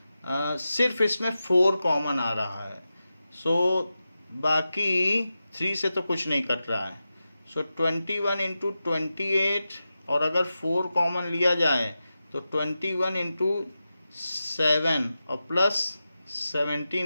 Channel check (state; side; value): inverted; both; correlation -0.92